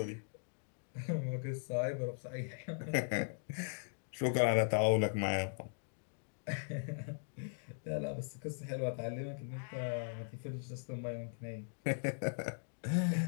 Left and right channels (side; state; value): right; silent; digital silence